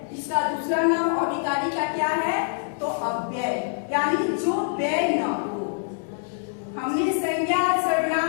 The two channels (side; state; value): right; silent; digital silence